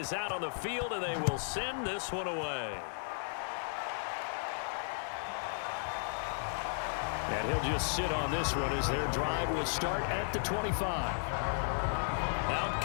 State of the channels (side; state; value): right; silent; digital silence